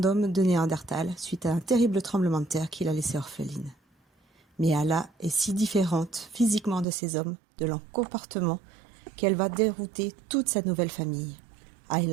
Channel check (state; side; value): drops out; left; at 6.9 s